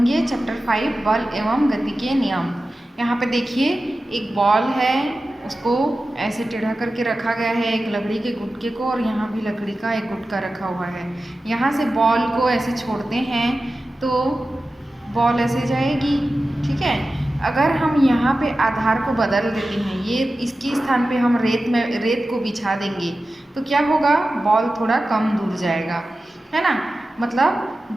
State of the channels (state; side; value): normal; both; correlation 0.94